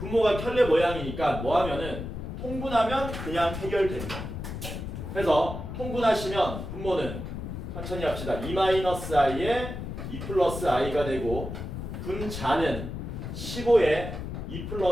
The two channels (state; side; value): noise; left; rumble, 7 dB below the sound